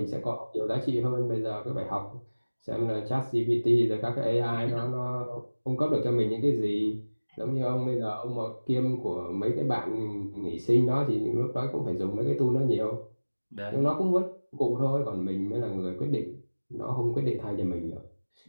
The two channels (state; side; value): inverted; both; correlation -1.00